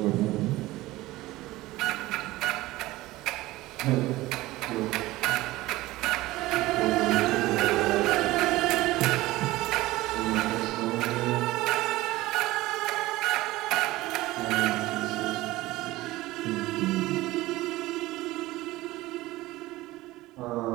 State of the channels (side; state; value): left; quieter; 18.2 dB